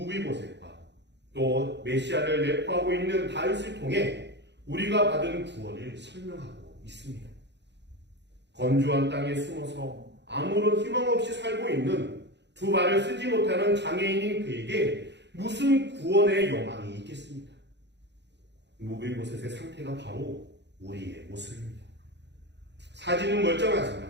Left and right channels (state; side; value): late; left; 0.51 ms